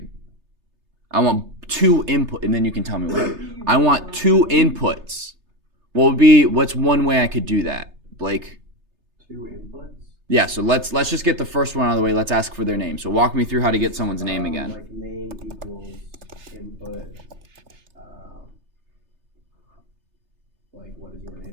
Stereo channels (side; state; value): left; late; 3.3 ms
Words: I want two input, and then you can tell me what. I want two inputs. What's one way I could do that, Blake? Two inputs? Yeah, so let's just get the first one out of the way. Let's ask for their name. So walk me through how to get someone's name again. Like name equals input. Like, what is your